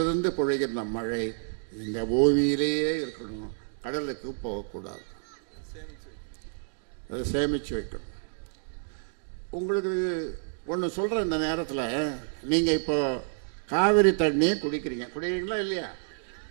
பொழிகின்ற மழை இந்த பூமியிலேயே இருக்கணும், கடலுக்கு போகக்கூடாது. அதை சேமித்து வைக்கணும். உங்களுக்கு ஒன்று சொல்கிறேன், இந்த நேரத்தில் நீங்கள் இப்போ காவிரி தண்ணியை குடிக்கிறீங்களா இல்லையா?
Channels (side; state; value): left; silent; digital silence